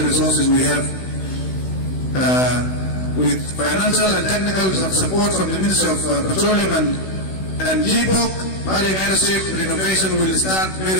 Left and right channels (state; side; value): late; right; 16 ms